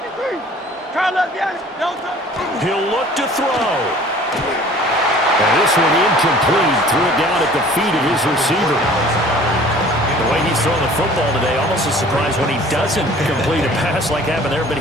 He'll look to throw. And this one incomplete. Threw it down at the feet of his receiver. The way he's throwing the football today, almost a surprise when he doesn't complete a pass like happened there, but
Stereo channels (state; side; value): normal; both; correlation 0.49